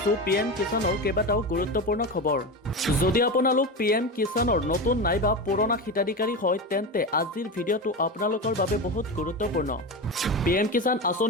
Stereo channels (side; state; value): both; normal; correlation 0.21